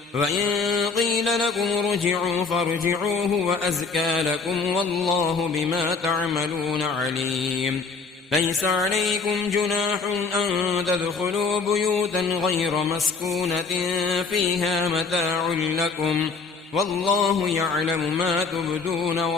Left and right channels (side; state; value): right; quieter; 4.7 dB